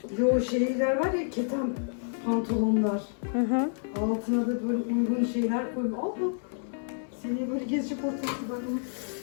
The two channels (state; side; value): silent; right; digital silence